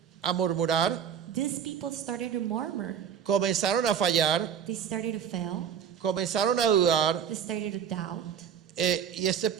a murmurar, these people started to murmur. comenzaron a fallar, They started to fail. comenzaron a dudar, They started to doubt. y este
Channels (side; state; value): left; quieter; 8.1 dB